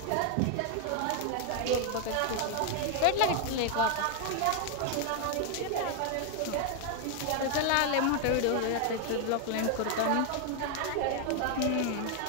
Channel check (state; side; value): different; both; correlation 0.01